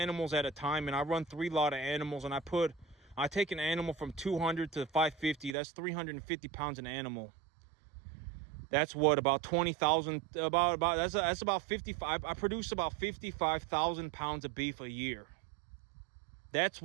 at a time, and I run 3 lot of animals, and I take an animal from 200 to 550, that's 350 pounds an animal. That's what, about 20,000, that's about 55. I produce about 55,000 pounds of beef a year. That's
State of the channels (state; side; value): drops out; left; at 5.6 s